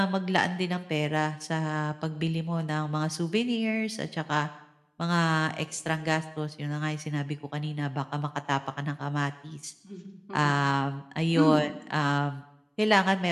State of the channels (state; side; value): identical; both; correlation 1.00